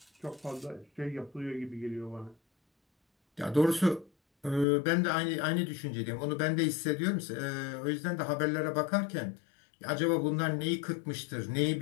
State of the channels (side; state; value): right; drops out; at 4.7 s